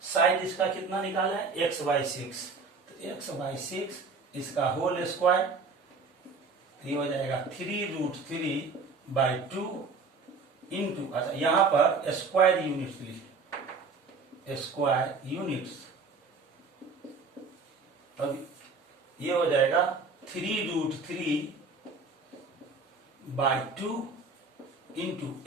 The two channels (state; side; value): quieter; left; 4.3 dB